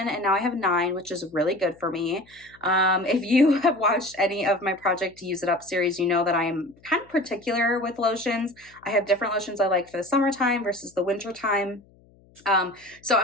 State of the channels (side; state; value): left; noise; hum, 29 dB below the sound